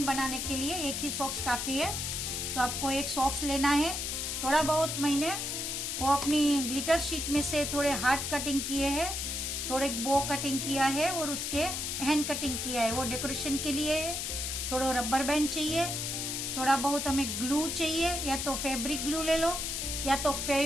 बनाने के लिए एक ही सॉक्स काफी है, तो आपको एक सॉक्स लेना है। थोड़ा बहुत मैंने वो अपनी ग्लिटर शीट में से थोड़े हार्ट कटिंग किए हैं, थोड़े बो कटिंग किया है और उसके हैंड कटिंग किया है, वो डेकोरेशन के लिए है। थोड़ा रबर बैंड चाहिए, थोड़ा बहुत हमें ग्लू चाहिए, या तो फैब्रिक ग्लू ले लो या तो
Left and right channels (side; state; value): left; noise; hiss, 2 dB below the sound